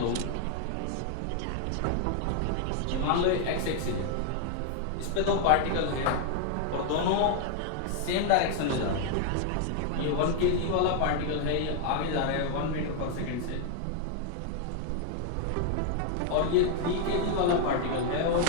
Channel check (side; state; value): both; different; correlation 0.00